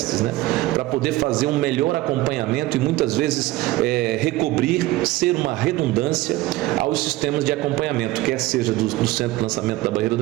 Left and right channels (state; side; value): quieter; left; 18.1 dB